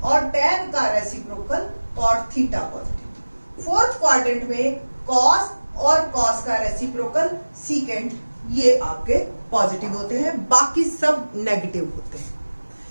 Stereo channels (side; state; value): both; inverted; correlation -1.00